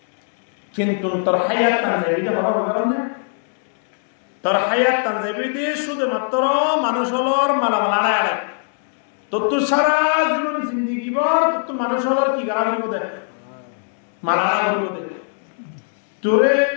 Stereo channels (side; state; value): right; silent; digital silence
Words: কিন্তু তোর হায়াত তানজাবিতে হওয়ার কারণে তোর হায়াত তানজাবিতে শুধুমাত্র মানুষ হলর মালামাল আড়ায় তোর সারা জীবন জিন্দিগি বর তোর মানুষ হলর কি গাড়া করিব দে মালা করিব দে তোরে